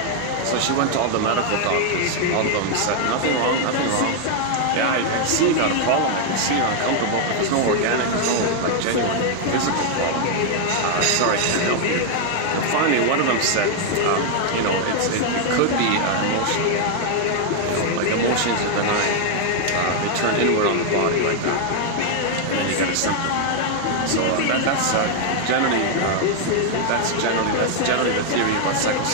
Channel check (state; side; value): different; both; correlation 0.00